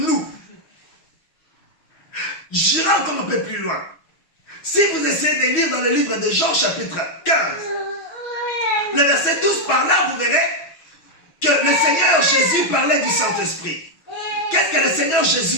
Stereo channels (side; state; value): right; late; 6.2 ms